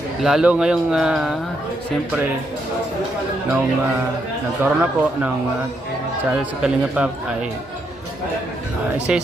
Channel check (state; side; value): normal; both; correlation 0.78